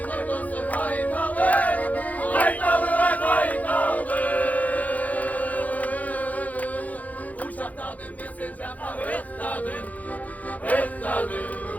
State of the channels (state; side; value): late; right; 0.076 ms